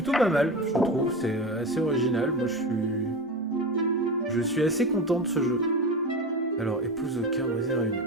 pas mal, je trouve, c'est assez original. Moi je suis assez content de ce jeu. Alors, épouse au cœur brisé réuni.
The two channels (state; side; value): normal; both; correlation 0.24